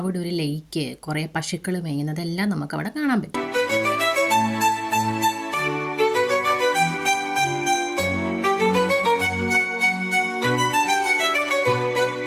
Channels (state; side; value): identical; both; correlation 1.00